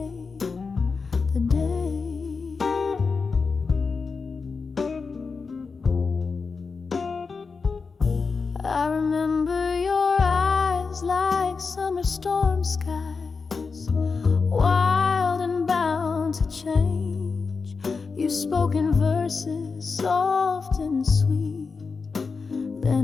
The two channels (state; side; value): quieter; right; 4.8 dB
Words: the day. I remember your eyes like summer storm skies, wild and bound to change. You spoke in verses soft and sweet,